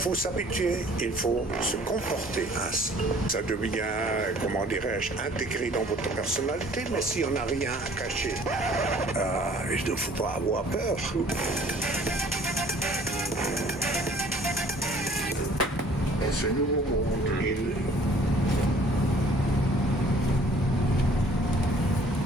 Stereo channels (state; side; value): normal; both; correlation 0.54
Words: s'habituer, il faut se comporter ainsi. Ça devient, comment dirais-je, intégré dans votre personnalité, mais si on n'a rien à cacher, il ne faut pas avoir peur. Dans ce nouveau monde,